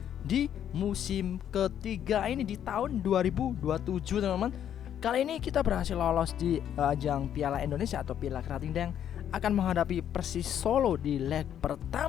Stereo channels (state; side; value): quieter; right; 9.8 dB